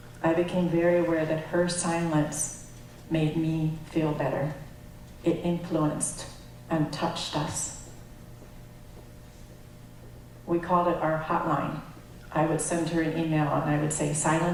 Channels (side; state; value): both; identical; correlation 1.00